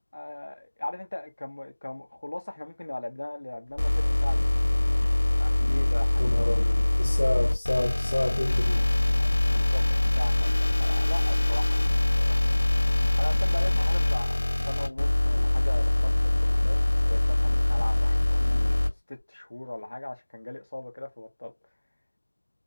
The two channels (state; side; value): inverted; both; correlation -1.00